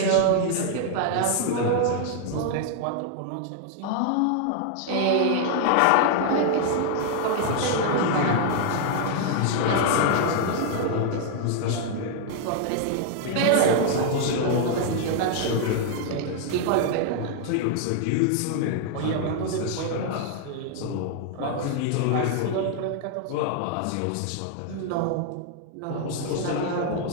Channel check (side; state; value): both; different; correlation 0.00